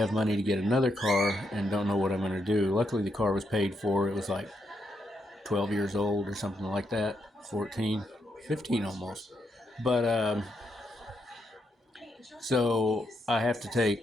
money to get another car and don't know what I'm going to do. Luckily, the car was paid for. It was like 12 years old or something like that. 14, 15 almost. But so I have to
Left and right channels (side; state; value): both; normal; correlation 0.80